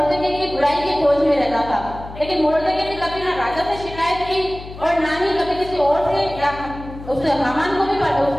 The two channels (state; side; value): noise; left; hum, 14 dB below the sound